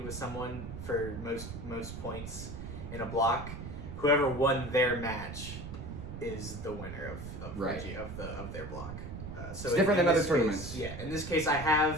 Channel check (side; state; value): right; noise; rumble, 9 dB below the sound